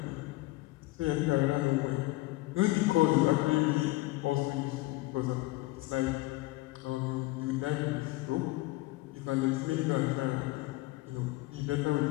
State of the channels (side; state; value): right; quieter; 20.2 dB